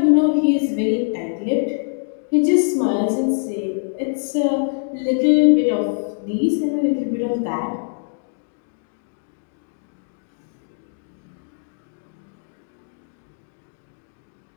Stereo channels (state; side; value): silent; right; digital silence